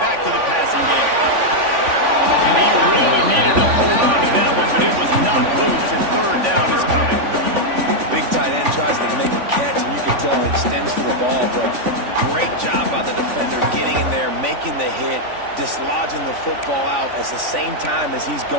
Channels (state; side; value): late; left; 3.5 ms